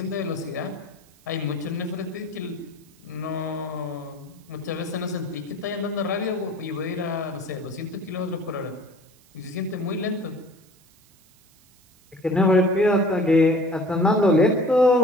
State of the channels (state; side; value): noise; right; hiss, 30 dB below the sound